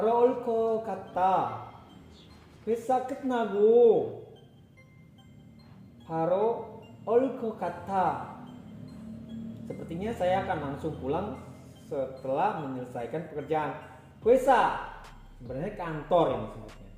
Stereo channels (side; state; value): both; identical; correlation 1.00